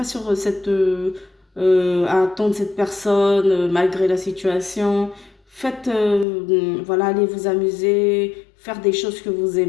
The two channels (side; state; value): right; drops out; at 6.2 s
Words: sur à attendre cette personne malgré la situation. Faites, voilà, allez vous amuser, faire des choses que vous